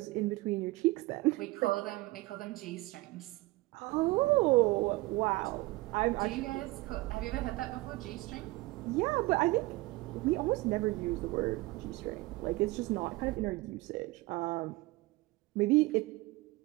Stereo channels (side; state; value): left; quieter; 21.0 dB